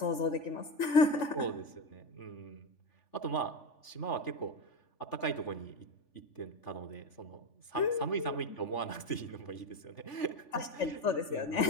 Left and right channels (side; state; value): right; late; 3.5 ms